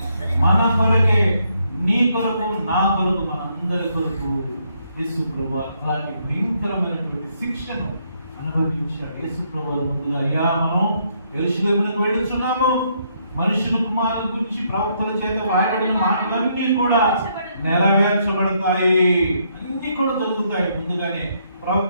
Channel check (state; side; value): inverted; both; correlation -0.73